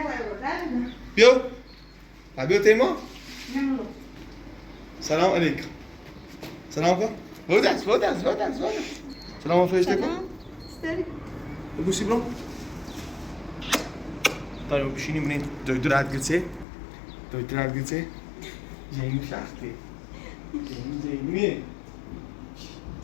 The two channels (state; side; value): drops out; right; at 16.7 s